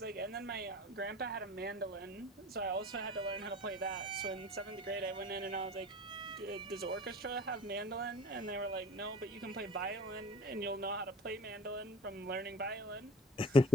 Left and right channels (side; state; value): both; normal; correlation 0.40